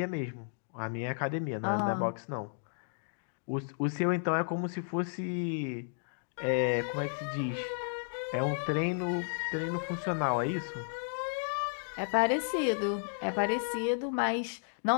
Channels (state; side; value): silent; right; digital silence